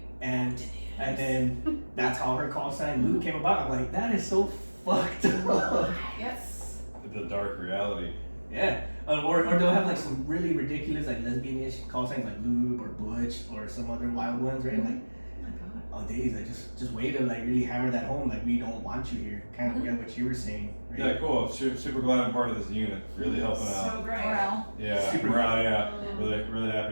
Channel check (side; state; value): both; inverted; correlation -1.00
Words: And then that's how her call sign Lou came about. I'm like, that is so fucked up. Yes. The dark reality. Yeah. Or they'll have like some really ridiculous like lesbian-ish call signs like lube or butch or some other wild ones, right? Like, Oh my god. oh days, like just way to like really hammer that home, like we don't want you here. Kind of what you were saying, right? Yeah, cool. Super glad I'm part of this unit. Really helping So out. great. Morale. Yeah, Super morale, yeah. Really